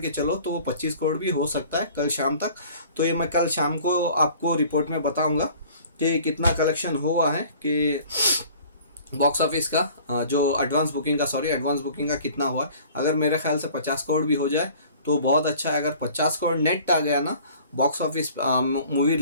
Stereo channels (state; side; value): inverted; both; correlation -0.49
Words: चलो, तो वो 25 करोड़ भी हो सकता है कल शाम तक। तो ये मैं कल शाम को आपको रिपोर्ट में बताऊँगा कि कितना कलेक्शन हुआ है, कि बॉक्स ऑफिस का जो एडवांस बुकिंग का कितना हुआ है। अगर मेरे ख्याल से 50 करोड़ भी हो जाए तो बहुत अच्छा है। अगर 50 करोड़ नेट आ गया ना बॉक्स ऑफिस मूवी